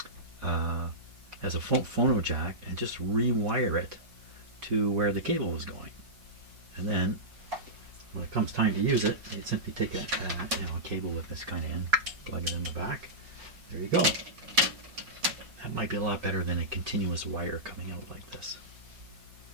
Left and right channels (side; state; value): left; late; 5.5 ms